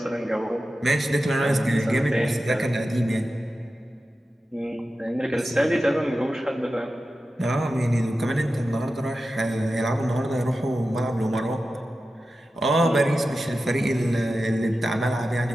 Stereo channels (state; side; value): normal; both; correlation 0.93